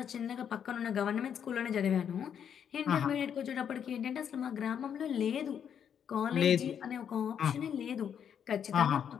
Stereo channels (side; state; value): right; quieter; 8.3 dB